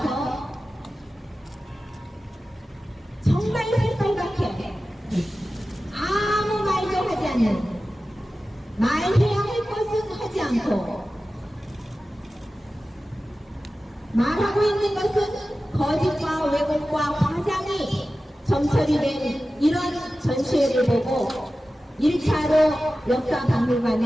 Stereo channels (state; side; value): normal; both; correlation 0.95